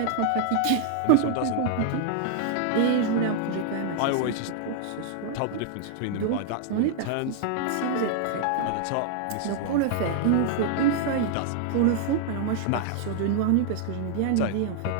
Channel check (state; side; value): different; both; correlation 0.00